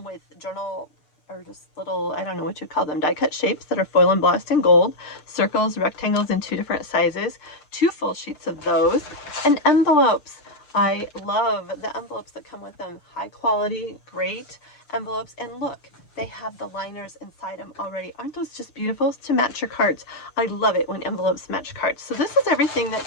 with journal, or just little, I don't know what you call them, die cut shapes that are foil embossed in gold, circles, rectangles in 2 different sizes, 2 full sheets of those, and envelopes. I love the envelopes that come with them. High quality, great envelopes, and look, they have the liners inside them already. Aren't those just beautiful to match your cards? I love it when envelopes match cards. So this is everything that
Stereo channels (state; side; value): late; right; 6.7 ms